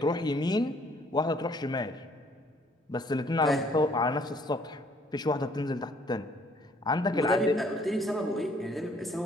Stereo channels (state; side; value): normal; both; correlation 0.62